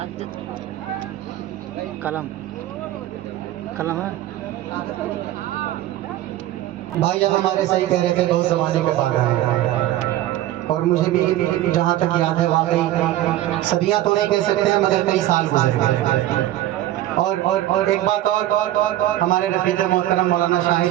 कलम कलम है भाई जब हमारे सही कह रहे थे बहुत ज़माने के बाद आए, और मुझे भी जहाँ तक याद है वाकई सदियाँ तो नहीं कह सकते हैं मगर कई साल गुजर गए। और एक बात और हमारे रफीक मोहतरम मौलाना शाहिद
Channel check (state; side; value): quieter; left; 14.1 dB